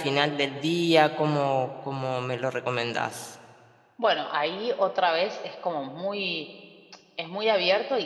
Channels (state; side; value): identical; both; correlation 1.00